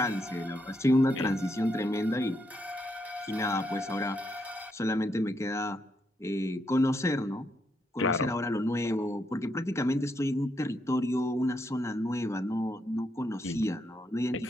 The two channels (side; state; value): both; normal; correlation 0.79